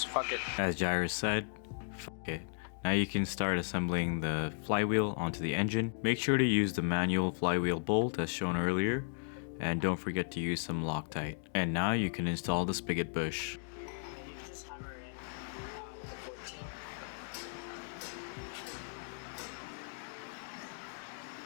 fuck it. As Jairus said, f it. Now you can start assembling the flywheel onto the engine. Make sure to use the manual flywheel bolt as shown earlier, and don't forget to use some Loctite. And now you can install the spigot bush. Right here, and then you can just hammer in with a 14.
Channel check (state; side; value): silent; right; digital silence